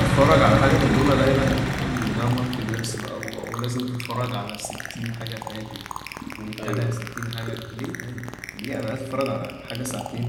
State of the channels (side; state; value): both; identical; correlation 1.00